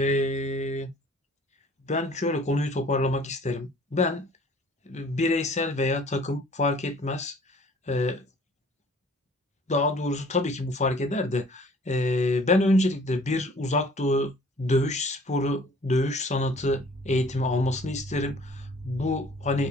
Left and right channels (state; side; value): normal; both; correlation 0.53